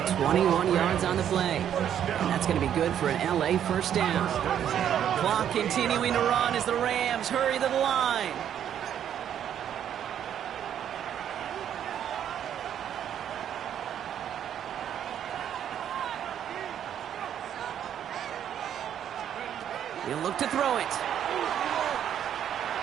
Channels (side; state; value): left; quieter; 9.7 dB